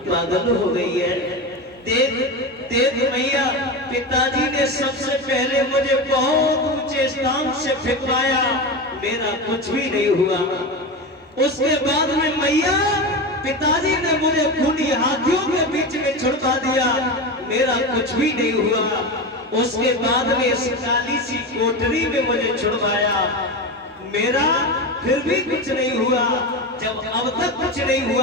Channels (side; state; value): both; normal; correlation 0.21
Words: पागल हो गई है? देख देख मैया, पिताजी ने सबसे पहले मुझे बहुत ऊंचे स्थान से फेंकवाया, मेरा कुछ भी नहीं हुआ। उसके बाद में मैया पिताजी ने मुझे खूनी हाथियों के बीच में छुड़वा दिया, मेरा कुछ भी नहीं हुआ। उसके बाद में इस काली सी कोठरी में मुझे छुड़वाया, मेरा फिर भी कुछ नहीं हुआ। जब अब तक कुछ नहीं